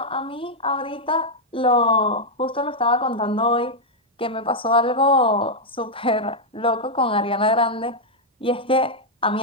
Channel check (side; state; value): both; normal; correlation -0.03